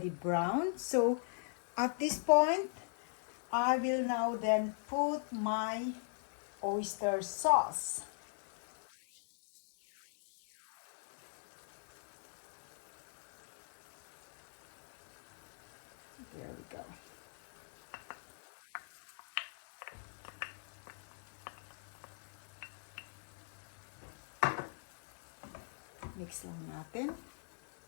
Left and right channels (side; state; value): right; silent; digital silence